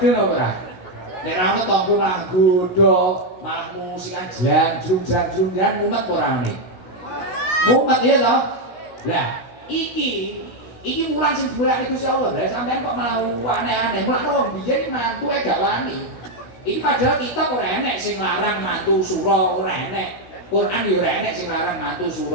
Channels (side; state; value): right; late; 16 ms